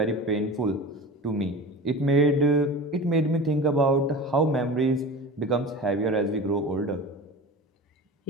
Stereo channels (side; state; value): both; normal; correlation 0.34